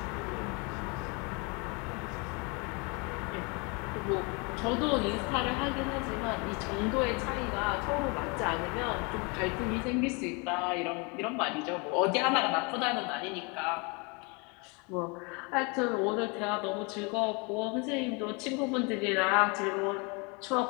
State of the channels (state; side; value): quieter; right; 30.7 dB